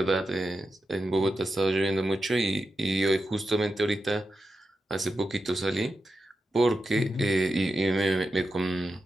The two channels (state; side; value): normal; both; correlation 0.89